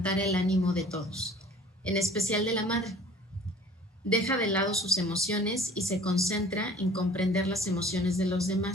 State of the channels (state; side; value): normal; both; correlation 0.47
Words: el ánimo de todos, en especial de la madre. Deja de lado sus emociones y se concentra en comprender las emociones de los